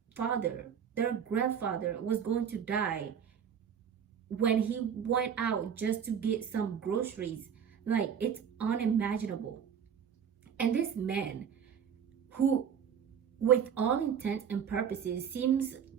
father, their grandfather was going to die when he went out just to get some groceries. Like, it's unimaginable. And this man, who with all intents and purposes seems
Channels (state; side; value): quieter; left; 7.9 dB